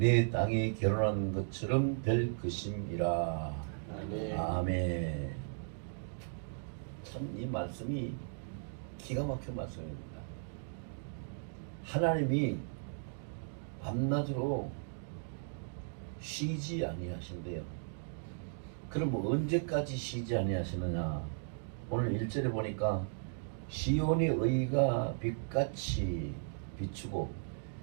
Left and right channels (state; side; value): silent; left; digital silence